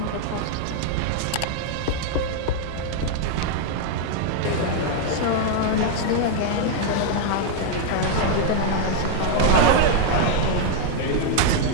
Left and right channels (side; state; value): both; different; correlation 0.00